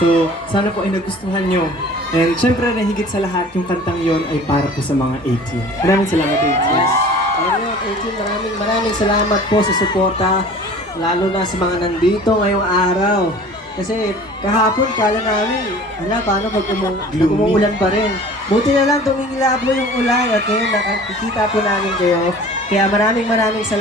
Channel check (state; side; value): normal; both; correlation 0.45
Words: So, sana po ay nagustuhan nyo. And syempre, na higit sa lahat, yung kantang yon ay para po sa mga 18. Maraming salamat, 18. Yes. Ayun, 18, maraming salamat po sa suporta, lalo na sa mga nandito ngayong araw. Kasi kahapon kala namin, paano pag umuulan pa rin. Buti na lang tumingilab mo yung ulan at ngayon nakikita po namin kayo. Kaya maraming